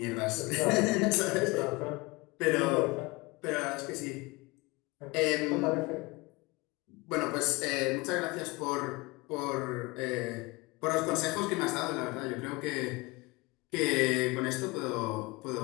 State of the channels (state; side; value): quieter; right; 24.3 dB